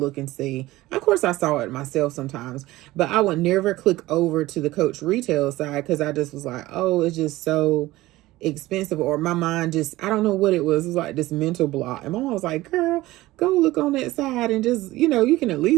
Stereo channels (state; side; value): quieter; left; 17.8 dB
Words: and see. Of course, I saw it myself sometimes, but I would never click over to the Coach retail side because I just was like, oh, it's just so expensive, or my mind just, I don't know what it was. It was like this mental block. And my mom was like, girl, go look on that side and just, you can at